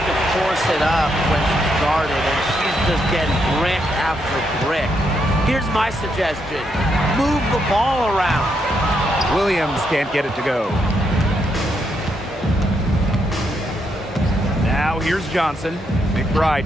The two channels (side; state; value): both; normal; correlation 0.78